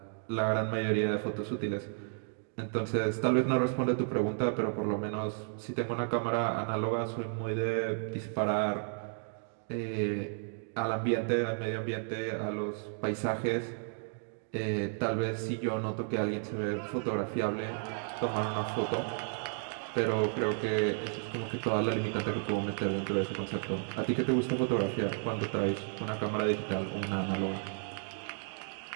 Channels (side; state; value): left; silent; 56 dB below the other